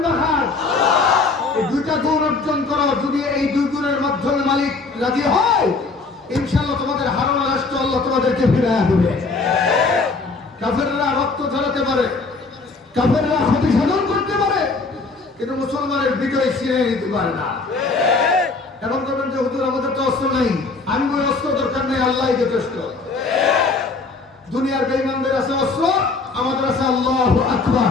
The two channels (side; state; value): right; quieter; 4.0 dB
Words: হার। এই দুইটা গুণ অর্জন করো। যদি এই দুই গুণের মাধ্যমে মালিক রাজি হয়, ইনশাআল্লাহ তোমাদের হারানো রাষ্ট্র আল্লাহ তোমাদেরকে ফিরিয়ে দেবে। কাফেররা রক্ত ঝরাতে পারে, কাফেররা ক্ষতি সাধন করতে পারে, কিন্তু মুসলমানের বিজয় ছিনিয়ে নিতে পারে না। এখন বলবেন যে হুজুর আমাদের তো অস্ত্র নেই। আমি ওই অস্ত্র দরকার নেই, আল্লাহই যথেষ্ট। দুনিয়ার বেঈমানদের আছে অস্ত্র, আমাদের আছে আল্লাহু আকবার।